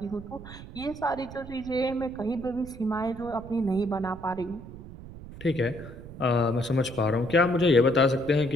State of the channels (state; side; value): noise; right; rumble, 15 dB below the sound